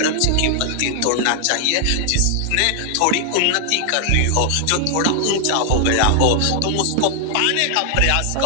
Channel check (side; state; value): both; different; correlation 0.00